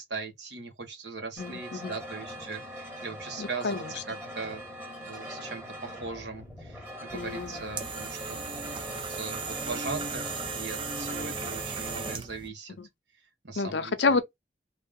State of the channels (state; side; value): normal; both; correlation -0.01